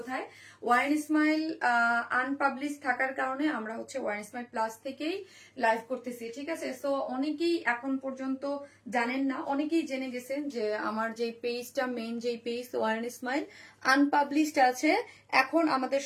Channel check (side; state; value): both; identical; correlation 1.00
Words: ওয়ারেন স্মাইল আনপাবলিশ থাকার কারণে আমরা হচ্ছে ওয়ারেন স্মাইল প্লাস থেকেই লাইভ করতেছি, ঠিক আছে। সো অনেকেই এখন পর্যন্ত জানেন না, অনেকেই জেনে গেছেন যে আমার যে পেজটা মেইন যে পেজ ওয়ারেন স্মাইল আনপাবলিশড আছে। এখন আমাদের